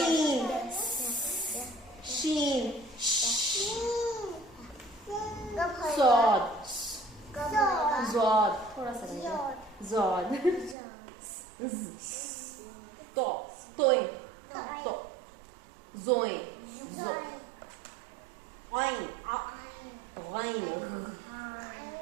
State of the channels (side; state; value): left; drops out; at 10.8 s